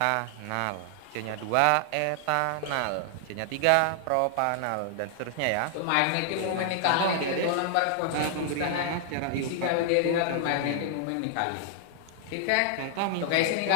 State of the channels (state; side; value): different; both; correlation 0.00